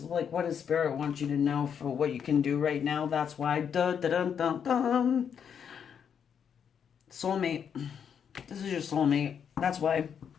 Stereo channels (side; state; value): right; quieter; 7.7 dB